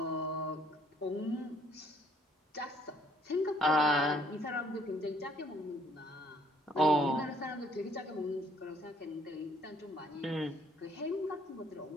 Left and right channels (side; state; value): both; normal; correlation 0.63